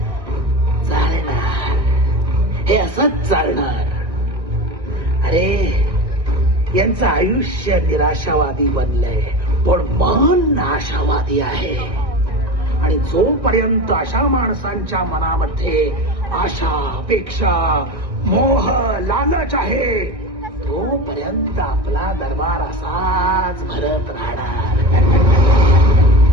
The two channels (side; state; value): left; late; 1.5 ms